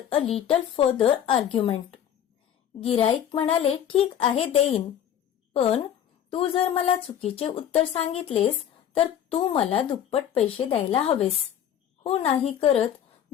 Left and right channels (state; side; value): quieter; right; 9.8 dB